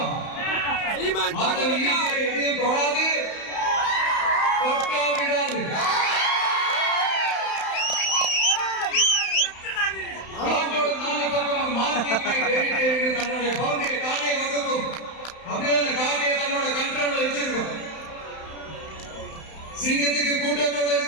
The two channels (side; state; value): right; late; 31 ms